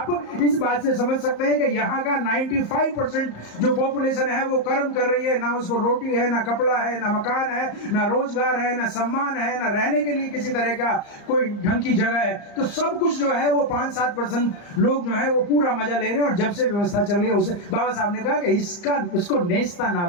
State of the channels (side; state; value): right; late; 35 ms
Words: इस बात से समझ सकते हैं कि यहाँ का 95% जो पॉपुलेशन है वो कर्म कर रही है, ना उसको रोटी है, ना कपड़ा है, ना मकान है, ना रोजगार है, ना सम्मान है, ना रहने के लिए किसी तरह का कोई ढंग की जगह है। तो सब कुछ जो है वो 5-7% लोग जो है वो पूरा मजा ले रहे हैं। और जब से व्यवस्था चल रही है उसे बाबा साहब ने कहा कि इसको नेस्ता